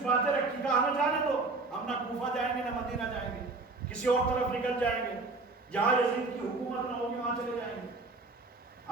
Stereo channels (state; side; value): quieter; left; 3.6 dB